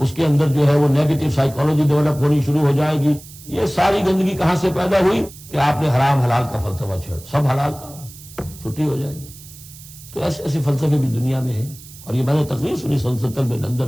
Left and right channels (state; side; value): noise; right; hiss, 18 dB below the sound